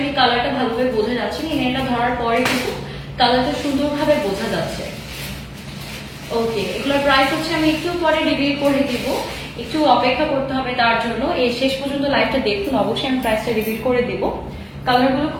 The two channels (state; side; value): identical; both; correlation 1.00